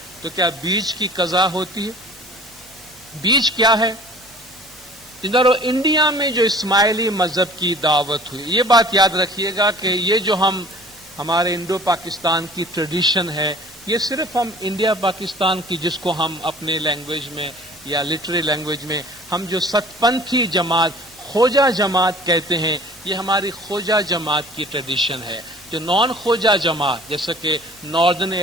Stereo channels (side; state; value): both; normal; correlation 0.48